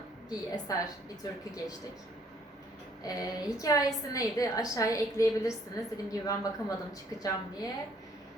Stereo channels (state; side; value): normal; both; correlation 0.64